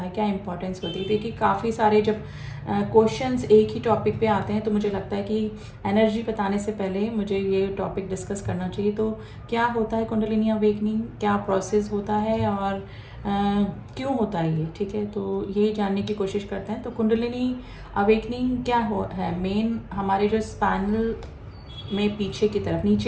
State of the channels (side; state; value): both; identical; correlation 1.00